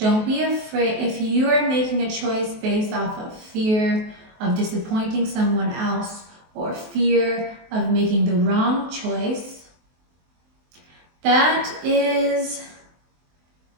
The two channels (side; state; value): left; late; 23 ms